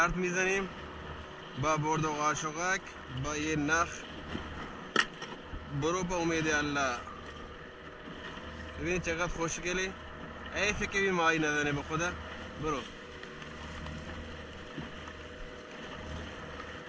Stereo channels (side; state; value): both; identical; correlation 1.00